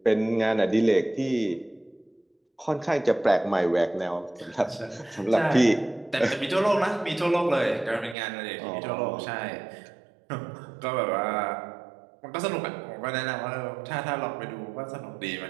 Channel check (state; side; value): drops out; left; at 8.2 s